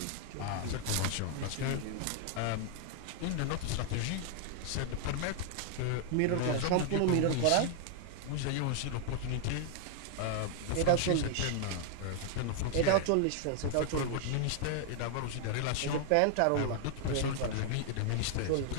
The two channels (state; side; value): different; both; correlation 0.00